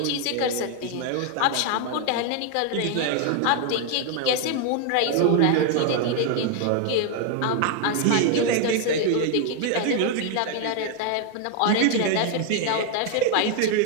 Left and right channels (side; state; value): both; different; correlation 0.00